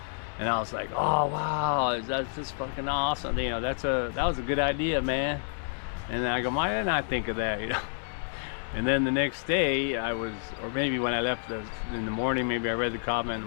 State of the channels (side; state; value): right; silent; 59 dB below the other